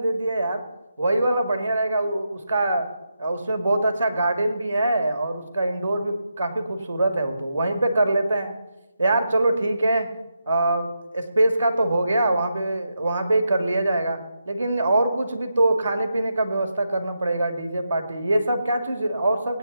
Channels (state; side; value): inverted; both; correlation -0.85